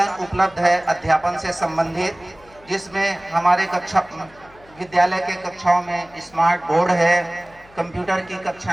उपलब्ध है अध्यापन से संबंधित, जिसमें हमारे विद्यालय के कक्षाओं में स्मार्ट बोर्ड है, कंप्यूटर की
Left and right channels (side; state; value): left; noise; hum, 26 dB below the sound